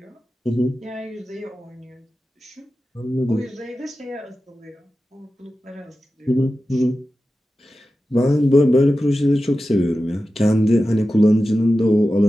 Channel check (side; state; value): both; normal; correlation 0.93